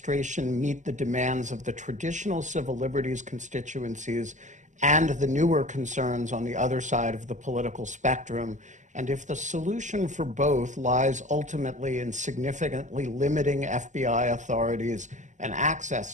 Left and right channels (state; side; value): late; left; 0.35 ms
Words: meet the demands of the traditional civil liberties constituencies and the newer concerns on the other side of the political spectrum? And if the solution for both lies ultimately in significantly limiting FBI authorities and